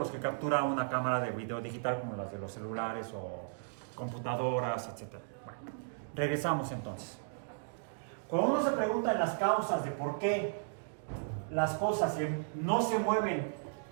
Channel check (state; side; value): silent; left; digital silence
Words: los que captura una cámara de video digital como las de los celulares o computadoras, etc. Bueno, regresamos entonces. Cuando uno se pregunta en las causas de por qué las cosas no se mueven